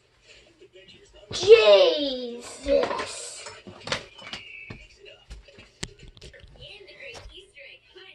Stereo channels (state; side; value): identical; both; correlation 1.00